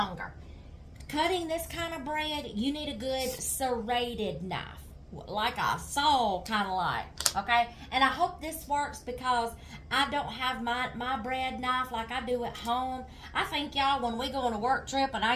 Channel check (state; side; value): identical; both; correlation 1.00